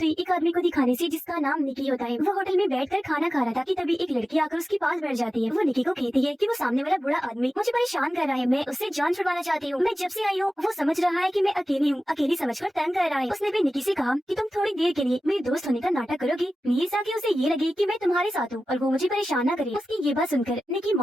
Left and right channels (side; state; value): both; normal; correlation 0.94